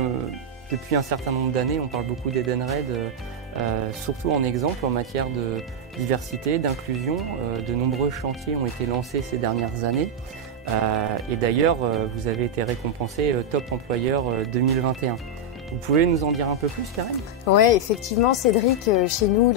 depuis un certain nombre d'années, on parle beaucoup d'Edenred, surtout en exemple en matière de diversité, d'inclusion. De nombreux chantiers ont été lancés ces dernières années. Et d'ailleurs, vous avez été récompensé Top Employeur 2021. Vous pouvez nous en dire un peu plus, Karen? Oui, effectivement, Cédric, chez nous,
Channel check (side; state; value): both; normal; correlation -0.02